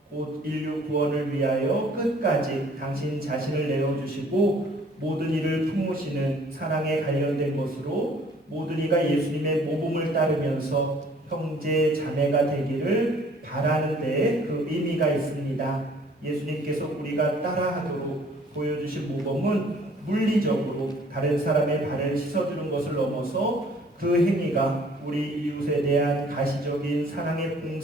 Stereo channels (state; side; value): normal; both; correlation 0.56